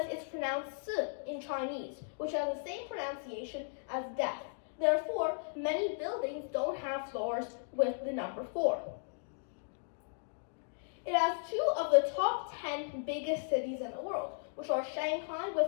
it's pronounced si in Chinese, which has the same pronunciation as death. Therefore, many buildings don't have floors with the number 4. It has 2 of the top 10 biggest cities in the world, which are Shanghai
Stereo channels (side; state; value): right; silent; digital silence